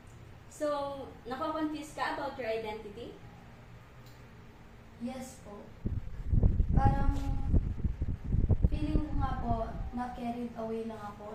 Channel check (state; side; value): identical; both; correlation 1.00